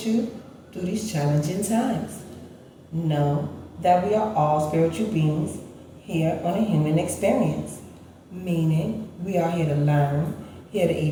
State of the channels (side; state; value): both; identical; correlation 1.00